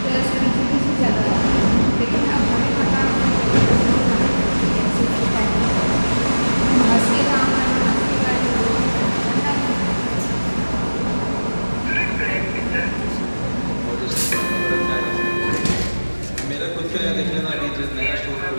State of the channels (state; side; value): inverted; both; correlation -1.00